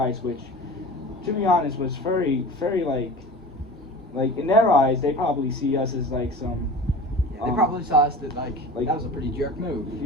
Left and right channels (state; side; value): normal; both; correlation 0.36